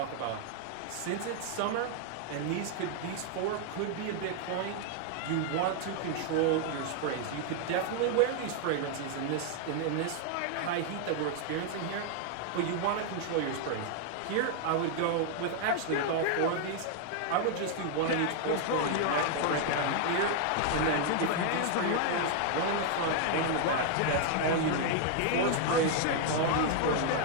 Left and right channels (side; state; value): both; different; correlation 0.00